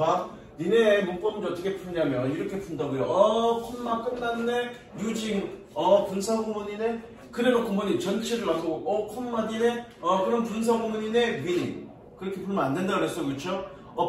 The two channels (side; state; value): both; identical; correlation 1.00